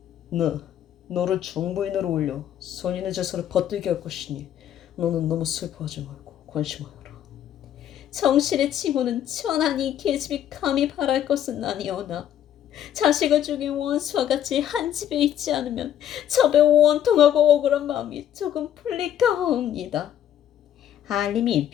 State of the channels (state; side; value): quieter; right; 10.6 dB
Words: 너를 정부인으로 올려 선인의 제사를 받들게 할 것이니 너는 너무 슬퍼하지 말고 관심하여라. 정실의 칭호는 천하니 계집이 감히 바랄 것은 아니오나 자식을 죽인 원수와 같이 한 집에 있지 않으면 첩에 원통하고 억울한 마음이 조금 풀릴까 하옵니다. 한림이